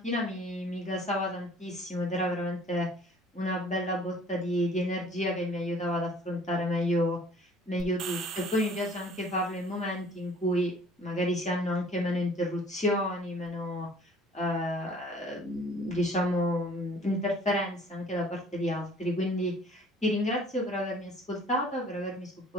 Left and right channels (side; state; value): both; normal; correlation 0.53